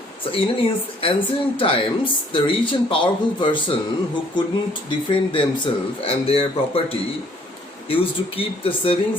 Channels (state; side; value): normal; both; correlation 0.61